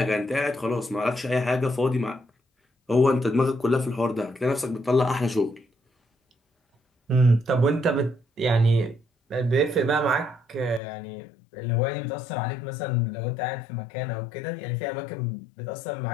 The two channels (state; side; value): drops out; right; at 10.8 s